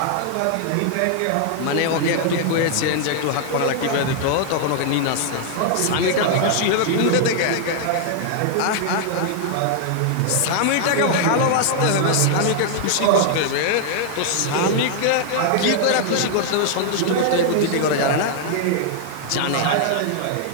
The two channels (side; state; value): both; different; correlation 0.00